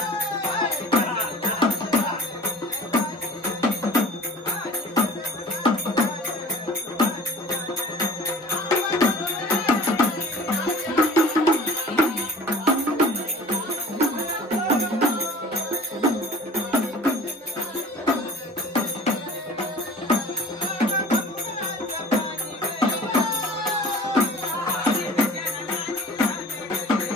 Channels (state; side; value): normal; both; correlation 0.44